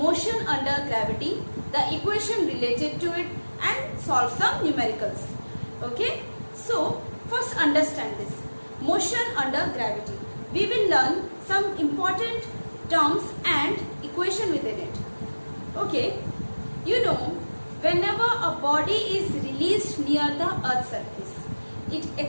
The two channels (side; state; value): both; inverted; correlation -1.00